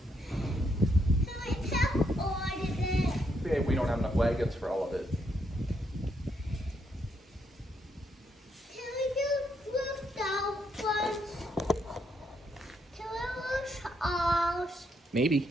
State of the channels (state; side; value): normal; both; correlation 0.76